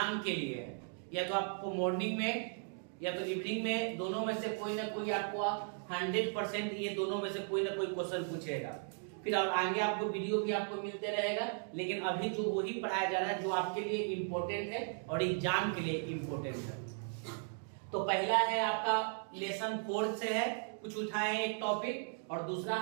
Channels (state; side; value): silent; left; 53 dB below the other